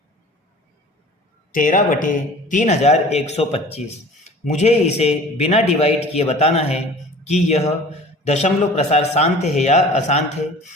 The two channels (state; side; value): normal; both; correlation 0.44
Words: 13/3125। मुझे इसे बिना डिवाइड किए बताना है कि यह दशमलव प्रसार शांत है या अशांत है।